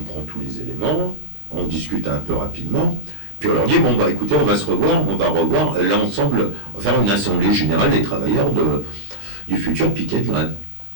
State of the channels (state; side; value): late; left; 20 ms